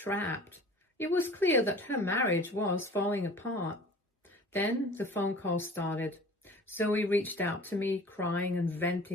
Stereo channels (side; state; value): both; normal; correlation 0.44